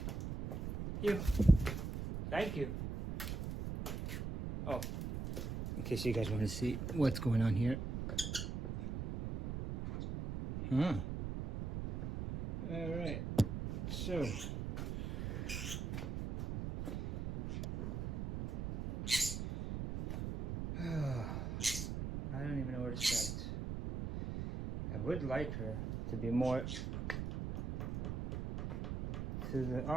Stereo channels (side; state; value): right; noise; rumble, 4 dB below the sound